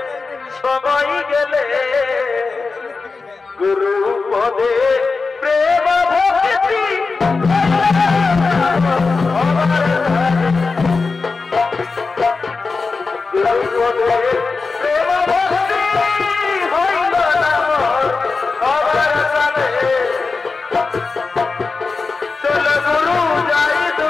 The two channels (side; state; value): right; quieter; 4.3 dB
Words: সবাই গেলে গুরু পদে প্রেম ভক্তি গুরু পদে প্রেম ভক্তি হইল না সবার সাথে। চল গুরু যাই